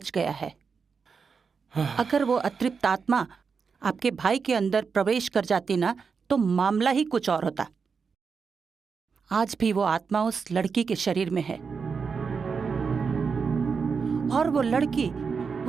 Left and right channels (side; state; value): left; quieter; 5.5 dB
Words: गया है। अगर वो अतृप्त आत्मा आपके भाई के अंदर प्रवेश कर जाती ना, तो मामला ही कुछ और होता। आज भी वो आत्मा उस लड़की के शरीर में है, और वो लड़की